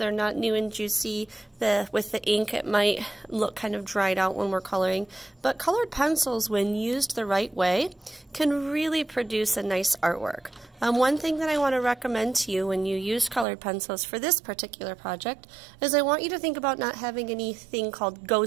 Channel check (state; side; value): drops out; left; at 13.5 s